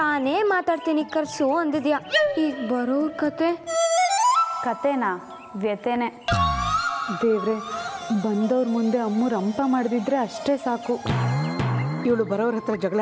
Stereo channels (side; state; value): both; identical; correlation 1.00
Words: ಮಾತಾಡ್ತೀನಿ ಕರ್ಸು ಅಂದಿದ್ಯಾ. ಈಗ ಬರೋರ್ ಕತೆನಾ ವ್ಯತೆನೆ. ದೇವ್ರೆ, ಬಂದವ್ರ ಮುಂದೆ ಅಮ್ಮು ರಂಪ ಮಾಡಿದ್ರೆ ಅಷ್ಟೇ ಸಾಕು. ಇವಳು ಬರೋರ ಹತ್ರ ಜಗಳ